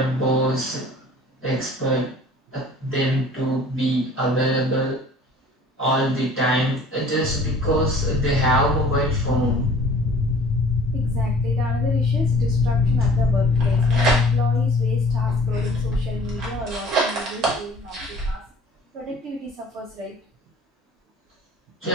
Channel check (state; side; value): normal; both; correlation 0.50